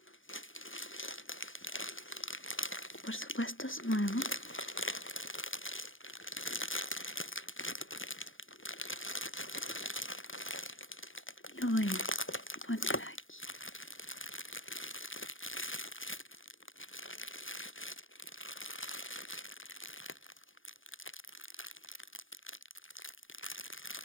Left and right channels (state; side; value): late; right; 0.58 ms